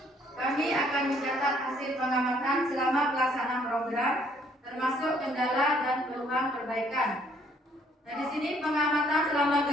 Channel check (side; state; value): both; normal; correlation 0.64